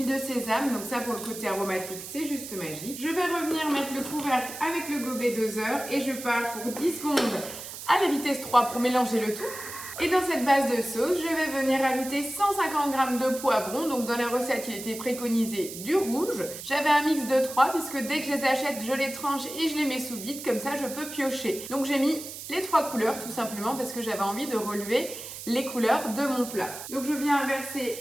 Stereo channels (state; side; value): noise; right; hiss, 10 dB below the sound